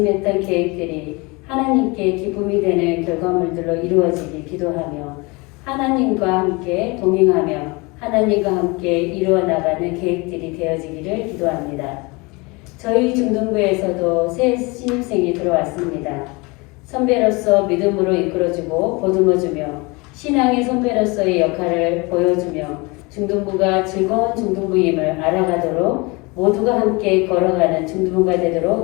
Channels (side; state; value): right; quieter; 26.5 dB